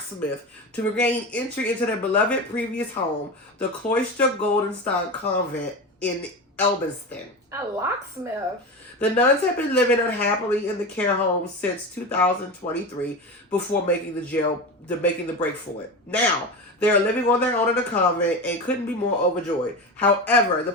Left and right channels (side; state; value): both; normal; correlation 0.24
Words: to regain entry into their beloved previous home, the Cloister Goldenstein Convent in Elbiston. A locksmith? The nuns have been living unhappily in the care home since 2023 before making the break for it. Now, they are living on their own in the convent and couldn't be more overjoyed. However, the